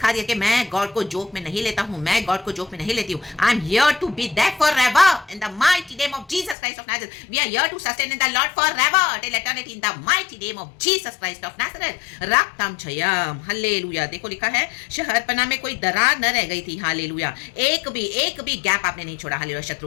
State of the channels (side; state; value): right; drops out; at 6.6 s